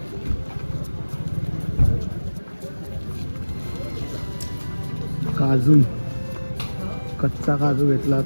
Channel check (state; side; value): inverted; both; correlation -1.00